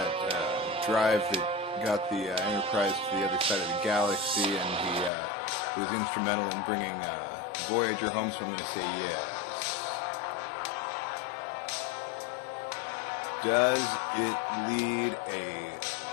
drive that got the Enterprise to the other side of the galaxy, and he was instrumental in bringing Voyager home, so I'm going to say yes. Does it lead a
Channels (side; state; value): right; drops out; at 5.1 s